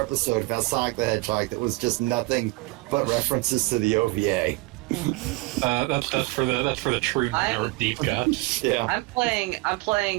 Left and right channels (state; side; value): quieter; left; 22.3 dB